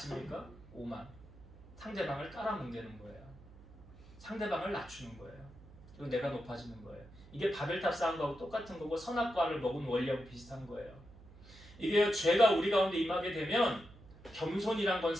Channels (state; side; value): noise; right; hum, 20 dB below the sound